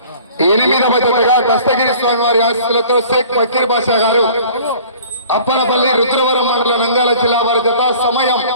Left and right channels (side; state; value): both; inverted; correlation -0.48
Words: 8వ జతగా దస్తగిరి స్వామి వారి ఆశీస్సులతో షేక్ ఫకీర్ బాషా గారు అప్పనపల్లి రుద్రవరం మండల నంద్యాల జిల్లా వారి జత. సమయం